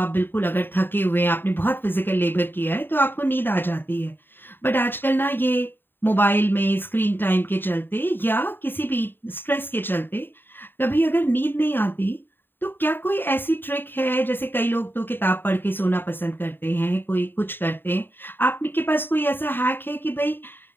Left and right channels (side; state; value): right; late; 0.096 ms